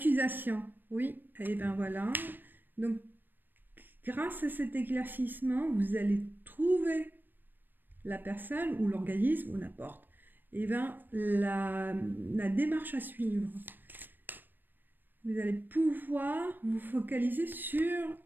oui, et bien voilà. Donc, grâce à cet éclaircissement, vous allez trouver la personne ou l'organisme ou n'importe, et bien la démarche à suivre. Vous allez pouvoir vous focaliser sur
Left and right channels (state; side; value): late; left; 0.093 ms